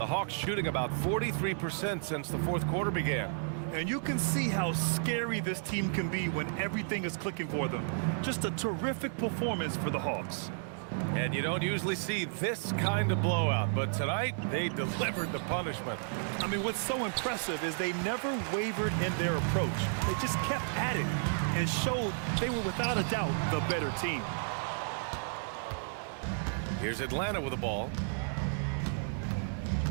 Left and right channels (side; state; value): left; silent; 56 dB below the other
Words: Hawks shooting about 43% since the fourth quarter began. And you can see how scary this team can be when everything is clicking for them. Just a terrific performance for the Hawks. And you don't usually see this kind of blowout, but tonight they delivered the punishment. I mean, what's so impressive is they never wavered in their approach. They just kept at it and showed they were without a doubt the better team. Here's Atlanta with the ball.